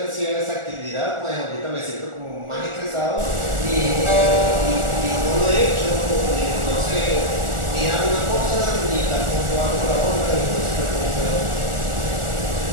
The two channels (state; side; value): late; left; 1.4 ms